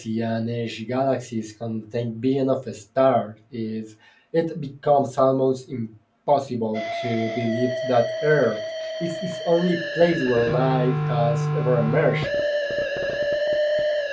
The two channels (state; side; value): identical; both; correlation 1.00